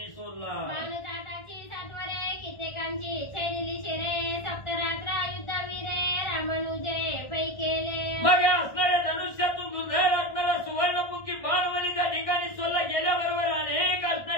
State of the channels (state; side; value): late; right; 1.6 ms